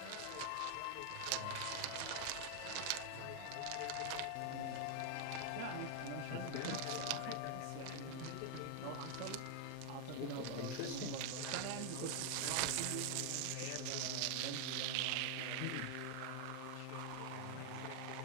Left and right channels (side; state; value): both; different; correlation 0.00